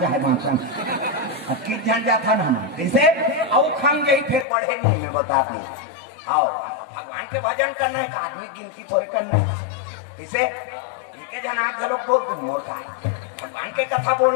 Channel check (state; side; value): drops out; right; at 4.5 s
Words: चाहे मांसन की जन जाता ना जैसे औ खान गई फिर बढ़े नहीं मैं बता दी आओ भगवान के भजन करना है आदमी गिनती थोड़े करना है जैसे के जन आग लोग बहुत मोर का भगवान के कथा